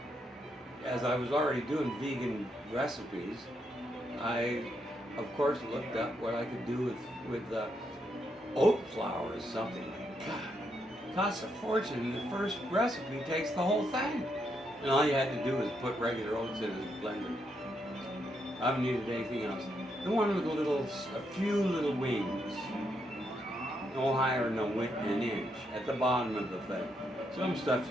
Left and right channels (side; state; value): both; normal; correlation 0.79